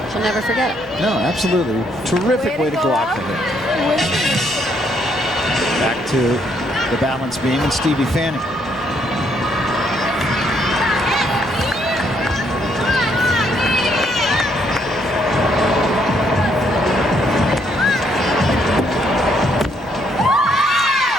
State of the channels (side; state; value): both; normal; correlation 0.71